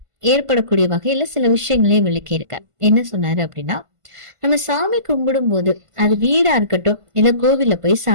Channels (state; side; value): late; left; 1.5 ms